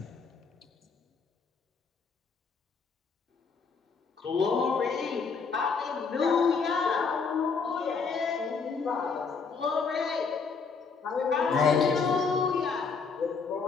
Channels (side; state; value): right; quieter; 5.2 dB